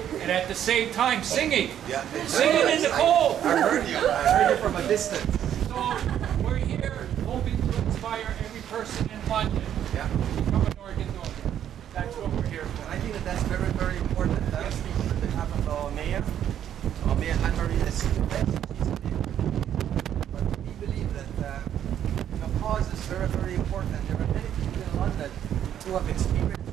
and at the same time singing. Yeah. Singing in the cold. I heard you. I heard you from a distance. So we're here hoping to inspire every person in London Yeah. to become an organ donor. That's what we're here for. I think that that's very, very important. I'm speaking on behalf of our mayor. Our mayor, Anne-Marie, is the best. She's a mayor. But we believe that the cause is very, very important. There are many people in London who have experienced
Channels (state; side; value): quieter; left; 10.2 dB